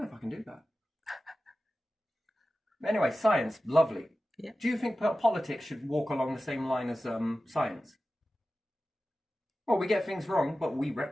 if I can do that. Anyway, science, lovely. Yeah. Do you think politics should walk along the same line as science? Well, we get things wrong, but we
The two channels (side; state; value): both; normal; correlation 0.95